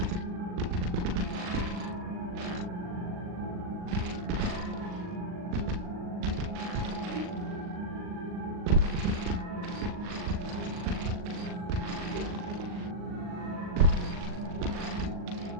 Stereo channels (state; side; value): late; left; 39 ms